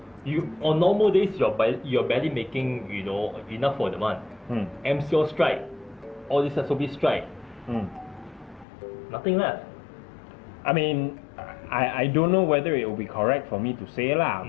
On normal days you're barely making enough for the month. MCO strike, all this SOB strike. Nothing left. I mean, I don't know whether it will be correct for me to say lah,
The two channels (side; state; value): right; drops out; at 8.7 s